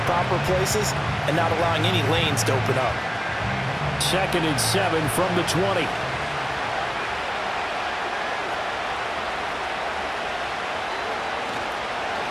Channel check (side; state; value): both; identical; correlation 1.00